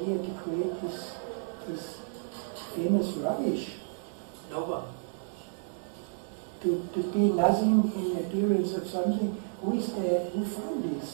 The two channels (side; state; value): left; silent; 57 dB below the other